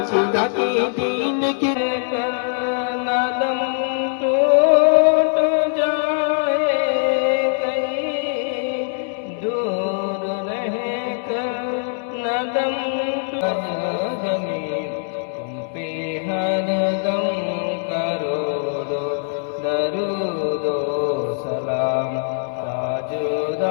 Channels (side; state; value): right; silent; 62 dB below the other